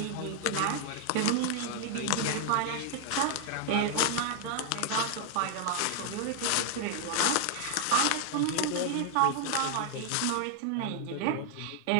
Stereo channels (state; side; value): different; both; correlation 0.00